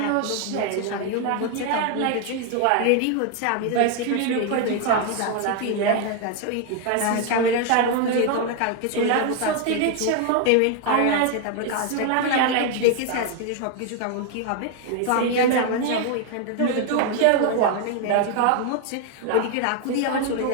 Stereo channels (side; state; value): both; different; correlation 0.01